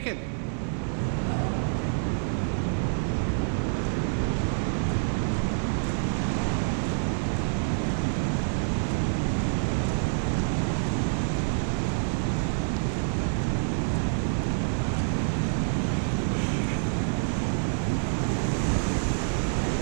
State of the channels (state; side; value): silent; left; digital silence